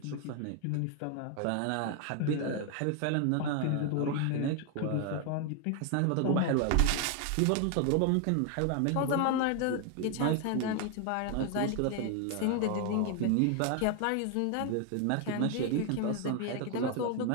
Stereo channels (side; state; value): both; different; correlation 0.00